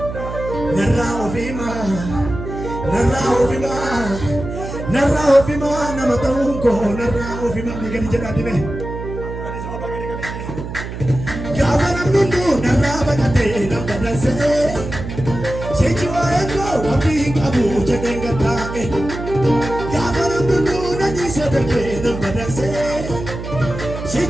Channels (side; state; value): right; noise; hum, 8 dB below the sound